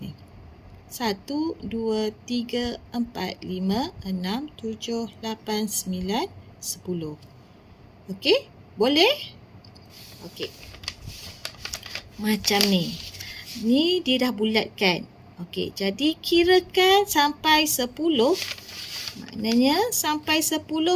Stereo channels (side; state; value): both; identical; correlation 1.00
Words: 1, 2, 3, 4, 5, 6, 7, 8, 9, 10. Okey? Boleh? Okey. Macam ni. Ni dia dah bulatkan. Okey, jadi kirakan sampai 10. Maknanya sampai 10